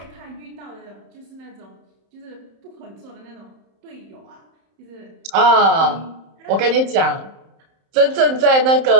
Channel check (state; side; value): late; left; 31 ms